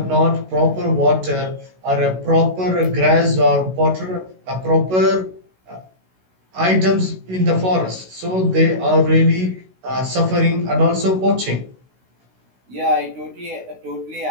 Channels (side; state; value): left; late; 16 ms